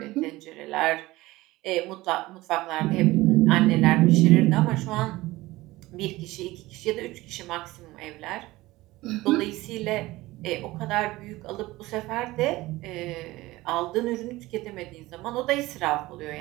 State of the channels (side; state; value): left; quieter; 18.9 dB